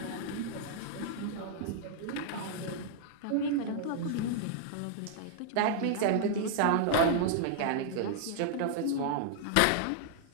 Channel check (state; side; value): different; both; correlation -0.01